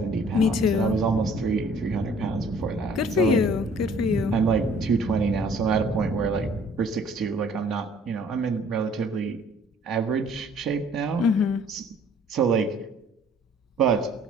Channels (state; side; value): normal; both; correlation 0.56